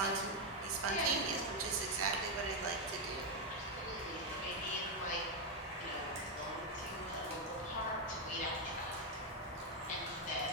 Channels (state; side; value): normal; both; correlation 0.03